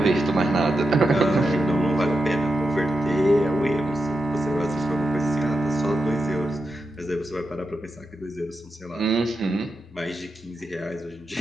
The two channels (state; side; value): normal; both; correlation 0.88